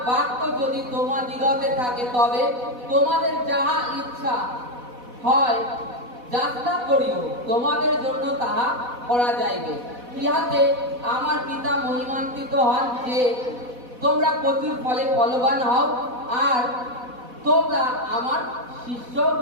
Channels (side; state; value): left; late; 4.1 ms